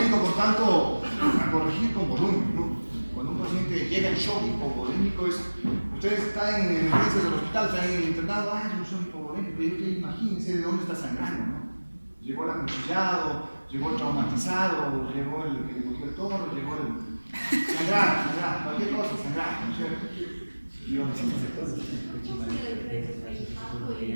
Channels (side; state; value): both; inverted; correlation -1.00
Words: por tanto, a corregir con volumen, ¿no? Cuando un paciente llega en shock hipovolémico, ustedes están en emergencias del hospital, están en el internado, es un shock hipovolémico, y imagínense de dónde está sangrando, ¿no? Llegó el acuchillado, llegó el traumatizado, llegó el que le cogió el toro, llegó el... Sangrar, cualquier cosa, sangrar, ¿no es cierto?